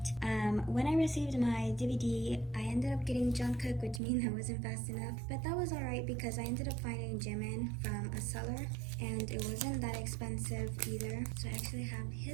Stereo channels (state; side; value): drops out; left; at 4.0 s